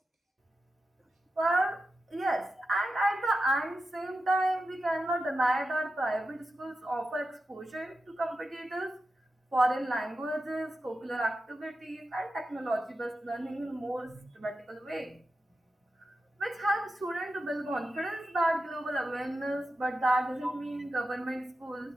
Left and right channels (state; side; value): normal; both; correlation 0.90